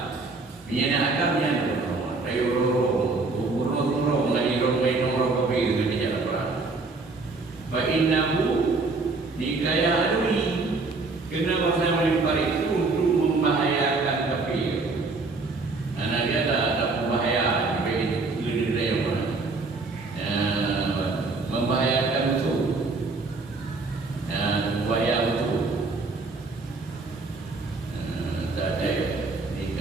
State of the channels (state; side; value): quieter; left; 3.8 dB